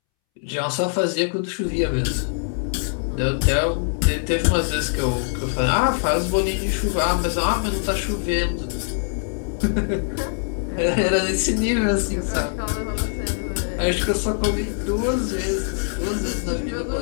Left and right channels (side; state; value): right; silent; 64 dB below the other